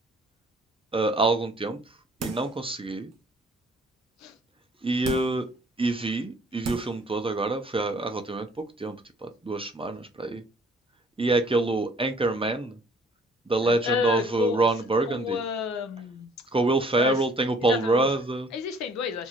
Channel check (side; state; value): both; normal; correlation 0.57